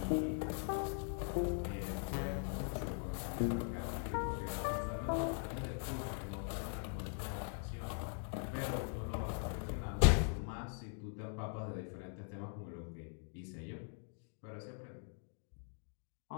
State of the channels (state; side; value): silent; right; 50 dB below the other